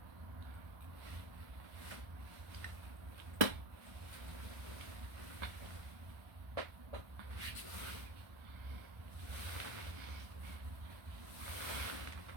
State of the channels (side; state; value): left; late; 1.4 ms